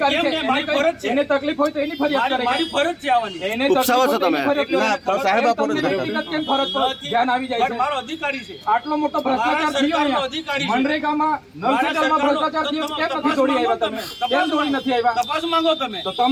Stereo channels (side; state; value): both; identical; correlation 1.00